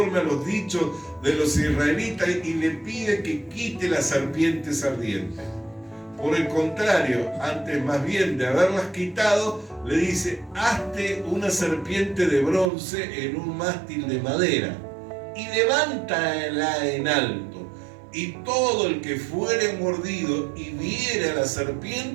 a los dichos de los israelitas y le pide que quite las serpientes ardientes. Por el contrario, antes más bien de haberlas quitado, le dice: hazte una serpiente de bronce en un mástil de madera y levántala en alto, y todo el que fuere mordido y viere a la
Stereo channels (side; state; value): left; drops out; at 12.7 s